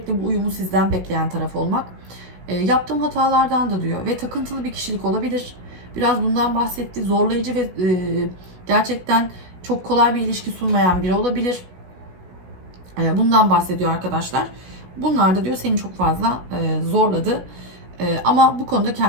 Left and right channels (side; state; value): left; late; 16 ms